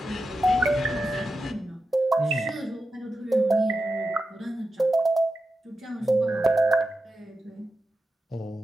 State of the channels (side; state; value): both; normal; correlation 0.90